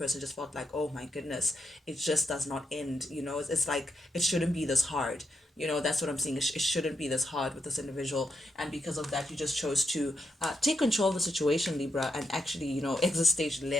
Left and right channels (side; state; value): both; normal; correlation 0.82